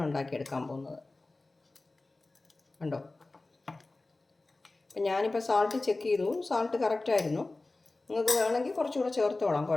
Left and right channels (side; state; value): right; quieter; 3.2 dB